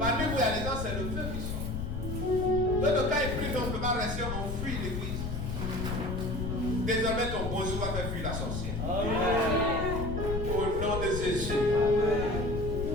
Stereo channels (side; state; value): left; noise; rumble, 3 dB below the sound